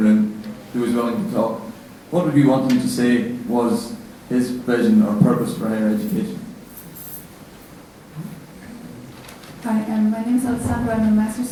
who was willing to talk, what would you want him to say was his vision or purpose for higher education? Hi, my name is Alessandra. I'm a master's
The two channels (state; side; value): identical; both; correlation 1.00